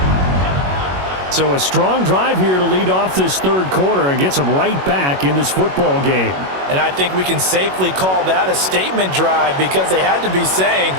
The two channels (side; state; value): left; late; 21 ms